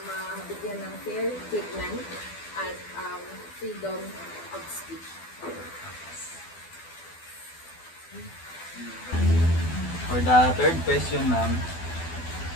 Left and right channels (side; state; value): right; late; 12 ms